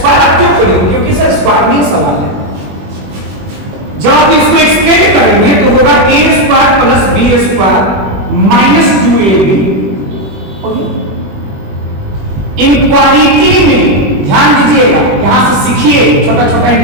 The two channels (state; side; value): late; left; 21 ms